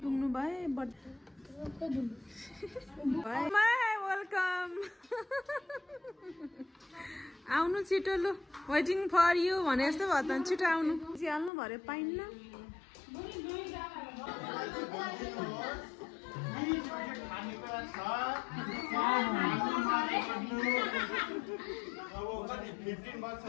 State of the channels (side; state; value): right; drops out; at 11.5 s